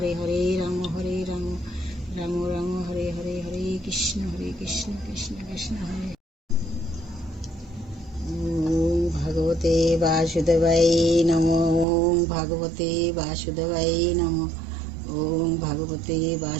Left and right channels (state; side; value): drops out; left; at 11.9 s